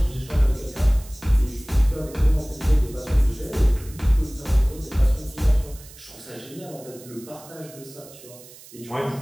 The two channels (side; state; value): right; noise; hiss, 20 dB below the sound